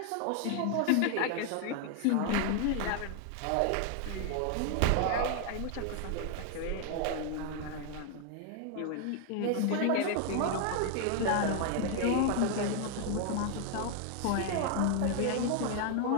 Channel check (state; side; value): different; both; correlation 0.00